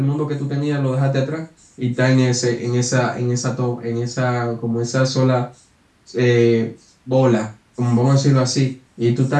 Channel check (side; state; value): both; identical; correlation 1.00